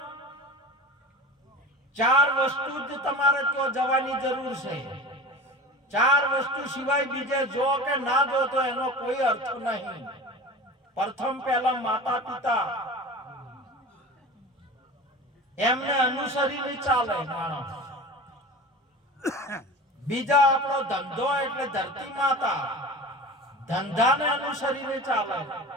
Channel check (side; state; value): both; normal; correlation 0.35